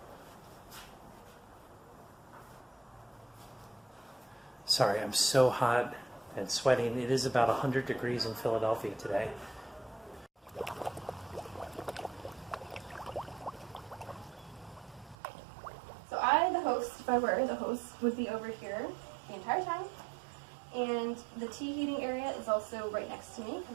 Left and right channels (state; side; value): drops out; left; at 15.2 s